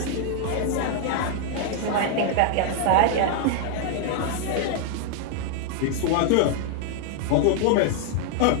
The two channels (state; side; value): different; both; correlation 0.00